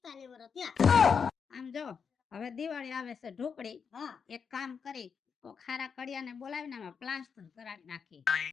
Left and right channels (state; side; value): quieter; right; 6.3 dB